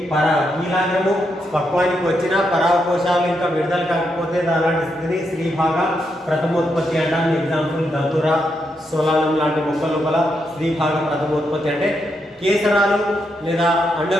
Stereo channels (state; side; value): normal; both; correlation 0.81